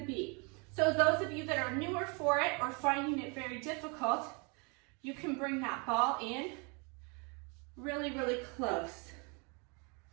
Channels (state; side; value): quieter; left; 32.6 dB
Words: be. So those of you that are newer for it or finding it very difficult, you can bring that ball in really, really close.